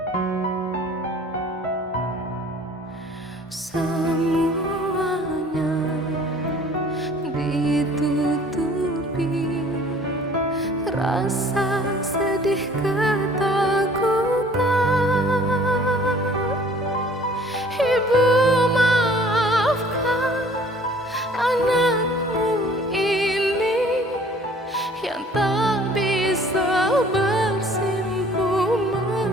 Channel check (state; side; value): normal; both; correlation 0.53